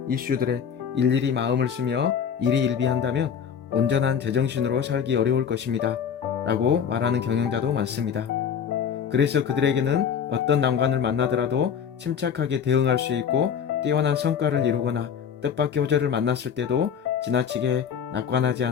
이슈들에 일일이 마음을 쓰며 일희일비한다면 온전한 제정신으로 살기 어려울 것입니다. 라고 말하는 경영자도 많습니다. 그래서 그들에게는 어떤 난관을 만나더라도 침착하게 대응할 수 있고 뛰어난 성과를 이루거나 뜻밖의 호재를 만났을 때도 지나치게 낙관하지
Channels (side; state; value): right; quieter; 7.6 dB